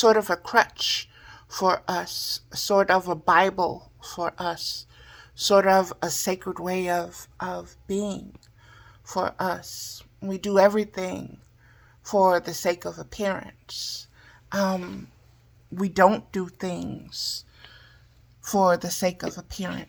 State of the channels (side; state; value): both; identical; correlation 1.00